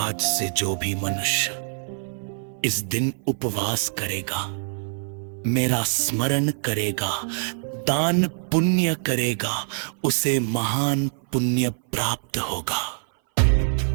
से जो भी मनुष्य इस दिन उपवास करेगा, मेरा स्मरण करेगा, दान पुण्य करेगा, उसे महान पुण्य प्राप्त होगा।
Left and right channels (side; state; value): left; silent; 59 dB below the other